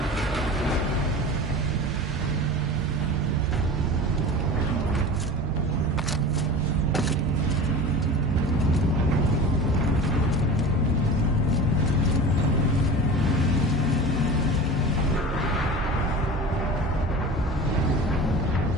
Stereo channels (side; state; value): both; normal; correlation 0.34